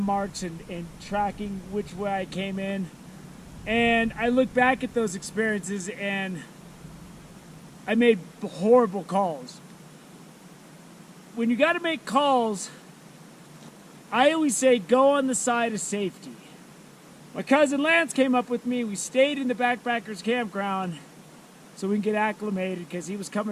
and tracking which way I came in. And I look back at those experiences and I made horrible calls. When you got to make calls, I always say go on the side of safety. My cousin Lance came up with me. We stayed in the backpackers campground so we can get acclimated because he was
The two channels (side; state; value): both; identical; correlation 1.00